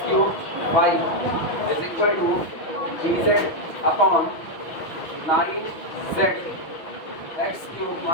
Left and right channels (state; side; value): late; right; 6.0 ms